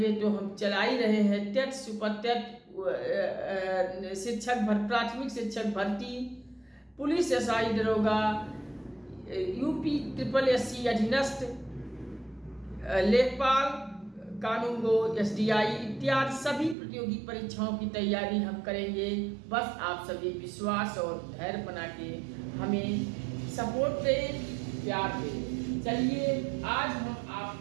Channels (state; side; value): drops out; left; at 16.8 s